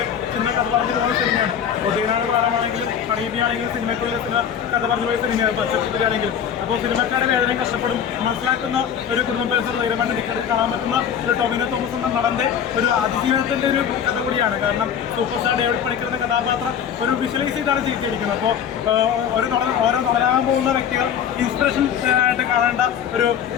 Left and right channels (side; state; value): right; quieter; 8.4 dB